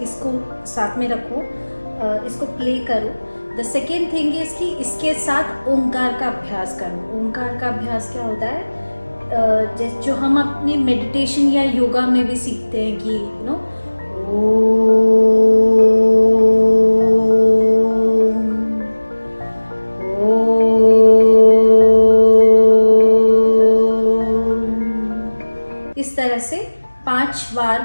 साथ में रखो, इसको प्ले करो। द सेकेंड थिंग इज़ कि इसके साथ ओंकार का अभ्यास करो। ओंकार का अभ्यास क्या होता है, जो हम अपने मेडिटेशन या योगा में भी सीखते हैं कि इस तरह से 5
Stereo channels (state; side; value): inverted; both; correlation -1.00